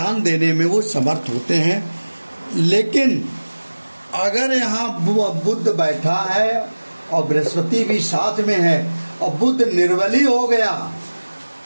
देने में वो समर्थ होते हैं। लेकिन अगर यहाँ बुध बैठा है और बृहस्पति भी साथ में है और बुध निर्बली हो गया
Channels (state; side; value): inverted; both; correlation -1.00